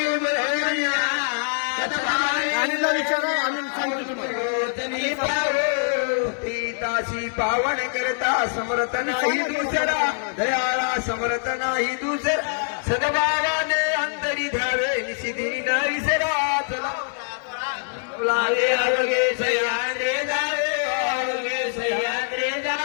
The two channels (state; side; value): silent; right; 63 dB below the other